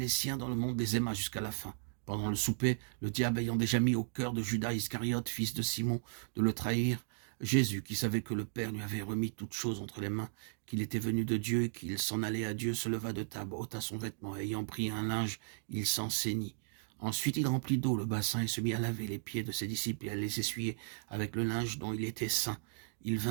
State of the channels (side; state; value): left; silent; digital silence